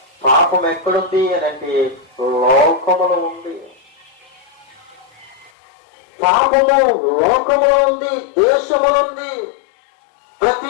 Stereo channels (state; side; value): drops out; right; at 5.5 s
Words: పాపం ఎక్కడుంది అని అంటే లోకములో ఉంది. పాపము లోకములో ఉంది, దేశంలో ఉంది,